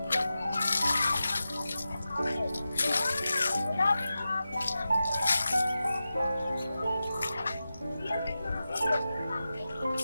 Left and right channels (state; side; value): inverted; both; correlation -0.93